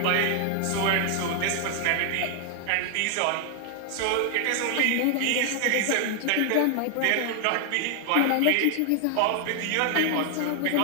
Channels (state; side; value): different; both; correlation 0.00